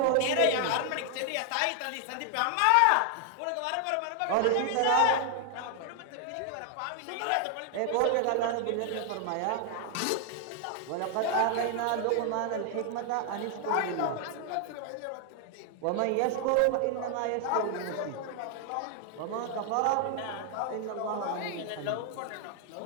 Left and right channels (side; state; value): both; different; correlation 0.00